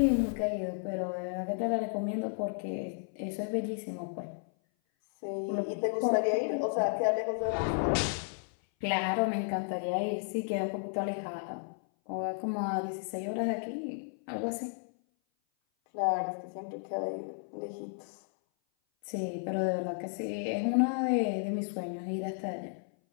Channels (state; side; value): silent; right; 56 dB below the other